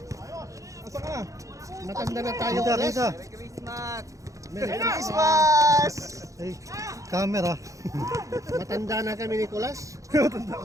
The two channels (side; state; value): left; late; 0.16 ms